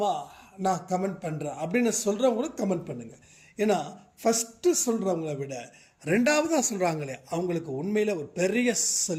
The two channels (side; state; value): both; identical; correlation 1.00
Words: நான் கமெண்ட் பண்ணுறேன் அப்படின்னு சொல்கிறவங்களும் கமெண்ட் பண்ணுங்கள். ஏன்னா ஃபஸ்ட்டு சொல்கிறவங்கள விட 2வதாக சொல்கிறாங்களே அவங்களுக்கு உண்மையில் ஒரு பெரிய